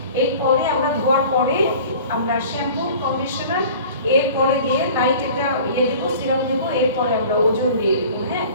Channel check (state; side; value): inverted; both; correlation -0.43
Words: এরপরে আমরা ধোয়ার পরে আমরা শ্যাম্পু, কন্ডিশনার, এরপরে দিয়ে লাইট একটা দেবো, সিরাম দেবো, এরপরে আমরা ওজন দিয়ে দেবো। হ্যাঁ,